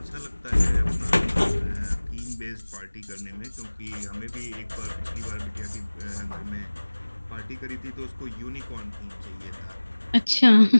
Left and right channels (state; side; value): inverted; both; correlation -1.00